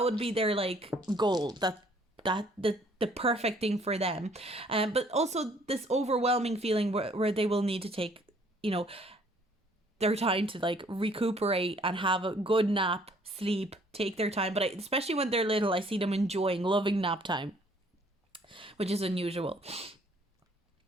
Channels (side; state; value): both; normal; correlation 0.60